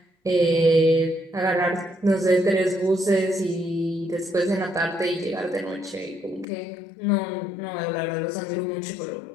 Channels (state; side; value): drops out; right; at 6.5 s